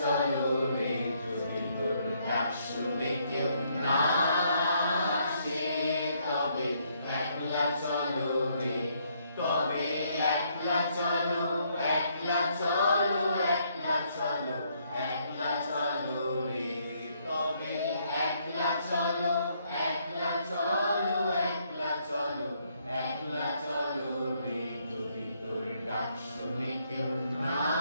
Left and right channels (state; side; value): inverted; both; correlation -0.71